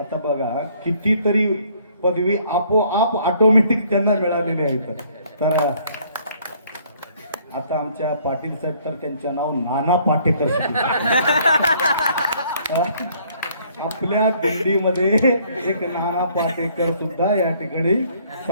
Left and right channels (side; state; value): both; inverted; correlation -0.62